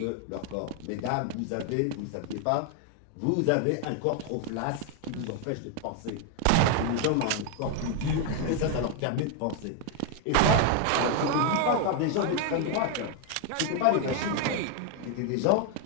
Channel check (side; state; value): both; different; correlation 0.01